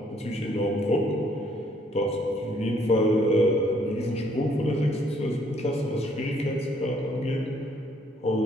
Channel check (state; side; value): normal; both; correlation 0.66